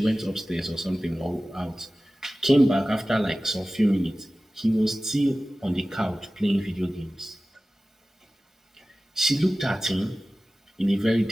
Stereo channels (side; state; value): both; normal; correlation 0.96